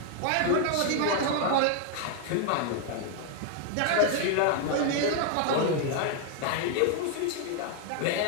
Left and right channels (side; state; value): both; different; correlation 0.00